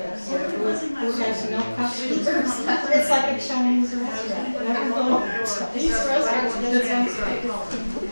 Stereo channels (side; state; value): both; inverted; correlation -1.00